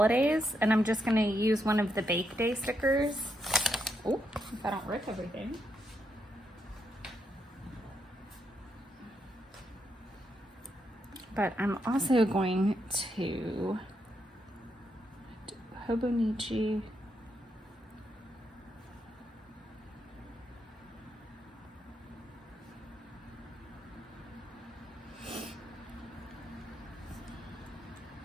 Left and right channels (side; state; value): both; normal; correlation 0.80